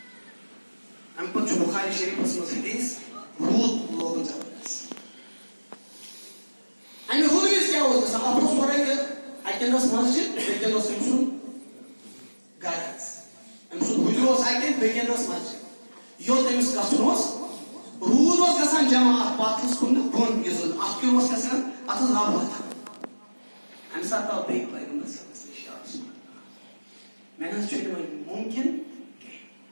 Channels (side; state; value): both; inverted; correlation -1.00